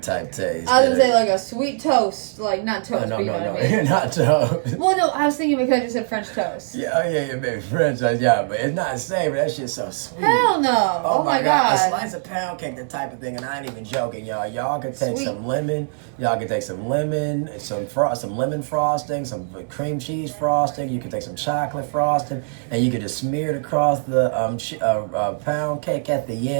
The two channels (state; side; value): silent; left; 60 dB below the other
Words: taste. I was gonna say like a sweet toast, like not toast. No, mean? Not toast. Well, no, I was thinking because you said French toast. Yeah, maybe French toast, but it's not savory. That shit's so sweet. Hell no! Oh my god, a slice of pound cake, the type of thing, and I ain't even joking, y'all. Y'all can take some lemon. Y'all can take some lemon, some lemon frosting, some cream cheese frosting. You can take some chocolate frosting, and you can just smear it across the pound cake at the